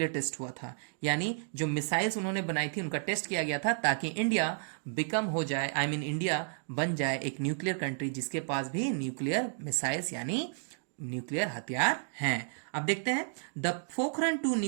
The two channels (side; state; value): left; silent; digital silence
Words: टेस्ट हुआ था। यानी जो मिसाइल्स उन्होंने बनाई थी उनका टेस्ट किया गया था ताकि इंडिया बिकम हो जाए, इंडिया बन जाए एक न्यूक्लियर कंट्री जिसके पास भी न्यूक्लियर मिसाइल्स यानी न्यूक्लियर हथियार हैं। अब देखते हैं द पोखरण 2